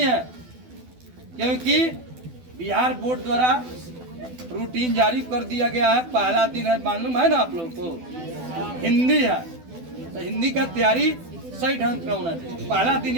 है। क्योंकि बिहार बोर्ड द्वारा रूटीन जारी कर दिया गया है। पहला दिन है, मालूम है ना आप लोगों को, हिंदी है, तो हिंदी का तैयारी सही ढंग का होना चाहिए। पहला दिन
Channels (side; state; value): left; late; 12 ms